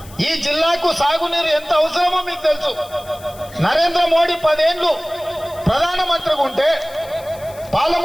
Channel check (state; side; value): noise; left; hiss, 21 dB below the sound